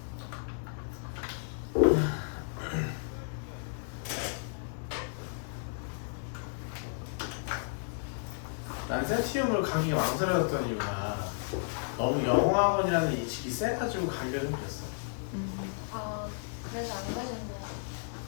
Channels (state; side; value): silent; right; 56 dB below the other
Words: 난 센티움을 가기 망설여졌던 이유가 너무 영어학원이라는 인식이 세가지고 가기가 좀 그랬어. 아, 그래서 안